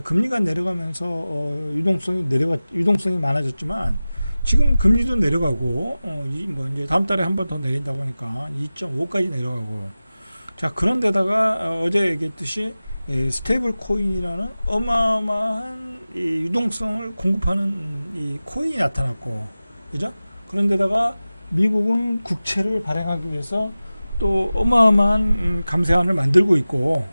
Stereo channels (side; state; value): both; inverted; correlation -0.97